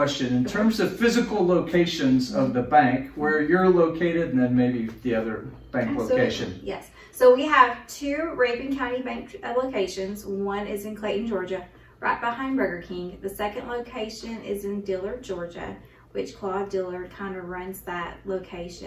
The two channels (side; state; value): both; identical; correlation 1.00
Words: In terms of physical locations of the bank, where you're located, and then maybe the other bank location. Yes. So we have two Rabun County Bank locations. One is in Clayton, Georgia, right behind Burger King. The second location is in Dillard, Georgia, which Claude Dillard kind of runs that